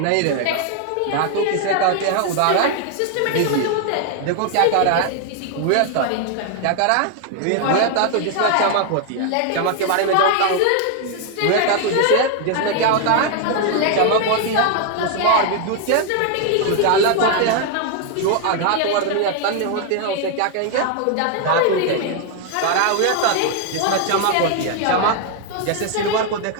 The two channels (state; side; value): different; both; correlation 0.00